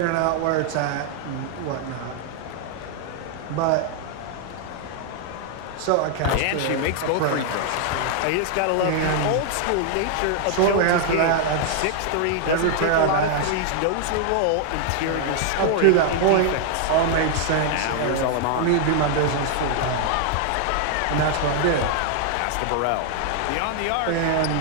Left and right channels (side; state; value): both; different; correlation 0.00